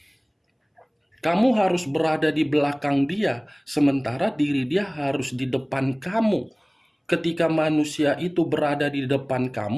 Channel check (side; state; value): both; identical; correlation 1.00